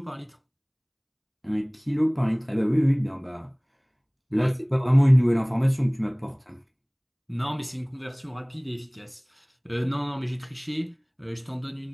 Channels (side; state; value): both; identical; correlation 1.00